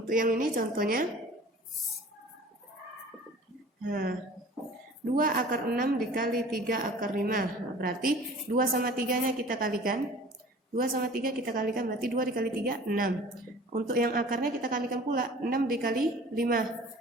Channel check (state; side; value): normal; both; correlation 0.45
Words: yang ini contohnya, 2 akar 6 dikali 3 akar 5. Nah, berarti 2 sama 3-nya kita kalikan. 2 sama 3 kita kalikan, berarti 2 dikali 3, 6. Untuk yang akarnya kita kalikan pula, 6 dikali 5.